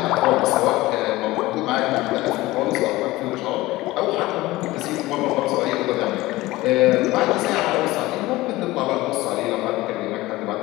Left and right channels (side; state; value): right; quieter; 18.7 dB